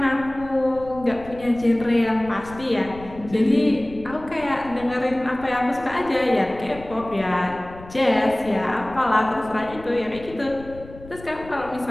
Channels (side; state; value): left; noise; rumble, 17 dB below the sound